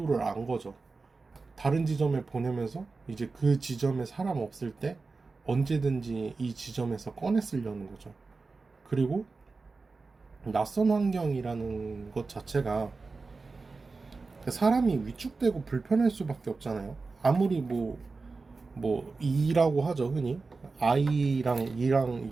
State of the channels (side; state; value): left; quieter; 4.0 dB